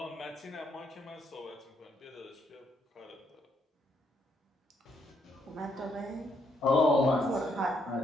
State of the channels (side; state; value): both; normal; correlation 0.74